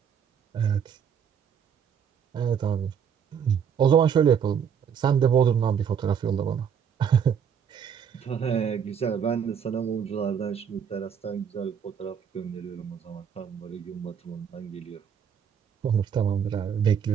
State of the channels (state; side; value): quieter; left; 7.7 dB